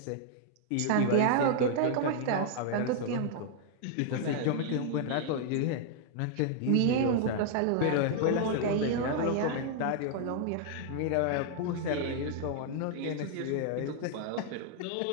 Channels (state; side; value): different; both; correlation 0.00